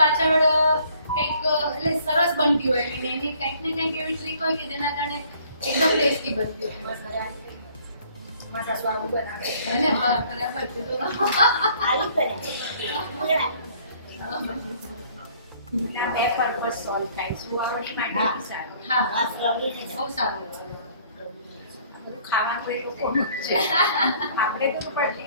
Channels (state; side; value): inverted; both; correlation -0.59